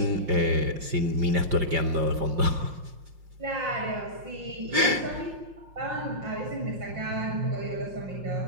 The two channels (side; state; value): left; late; 5.6 ms